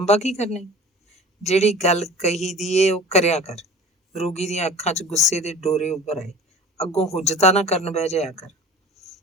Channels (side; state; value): both; normal; correlation 0.42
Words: ਕੀ ਕਰਨਾ? ਜਿਹੜੀ ਗੱਲ ਕਹੀ ਦੀ ਏ ਉਹ ਕਰਿਆ ਕਰ। ਰੋਗੀ ਦੀਆਂ ਅੱਖਾਂ 'ਚ ਗੁੱਸੇ ਦੇ ਡੋਰੇ ਉੱਭਰ ਆਏ। ਅੱਗੋਂ ਹੁਜਤਾਂ ਨਾ ਕਰਨ ਬਹਿ ਜਾਇਆ ਕਰ।